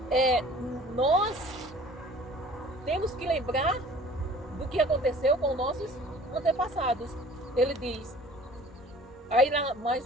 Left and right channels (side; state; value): both; normal; correlation 0.49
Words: nós temos que lembrar do que aconteceu com nossos antepassados. Ele diz, aí